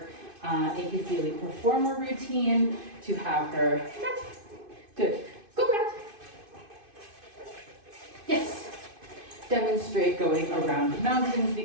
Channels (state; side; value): late; left; 2.5 ms